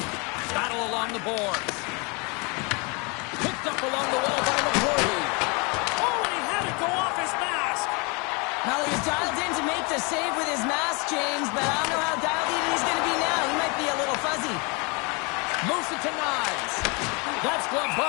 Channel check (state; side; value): quieter; right; 30.6 dB